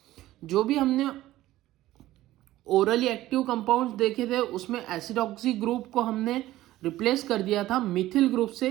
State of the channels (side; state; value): left; quieter; 15.5 dB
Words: जो भी हमने ओरली एक्टिव कंपाउंड्स देखे थे, उसमें एसिडॉक्सी ग्रुप को हमने रिप्लेस कर दिया था मिथिल ग्रुप से